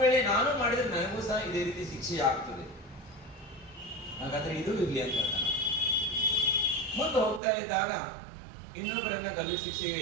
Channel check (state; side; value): drops out; left; at 7.4 s